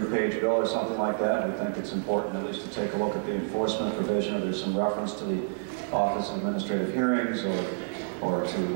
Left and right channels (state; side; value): silent; left; digital silence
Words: bill or something like that. We think it's important at least to take a look at the enforcement provision, or there's some reference to the Office of Administrative Hearings, or to